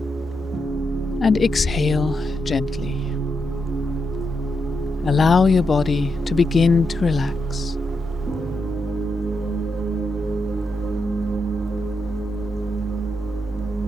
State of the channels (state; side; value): normal; both; correlation 0.84